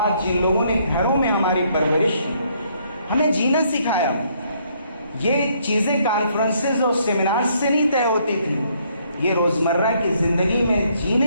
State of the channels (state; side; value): inverted; both; correlation -0.68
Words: جن لوگوں نے گھروں میں ہماری پرورش کی، ہمیں جینا سکھایا، یہ چیزیں کانفرنسز اور سیمینارز سے نہیں طے ہوتی تھی، یہ روزمرہ کی زندگی میں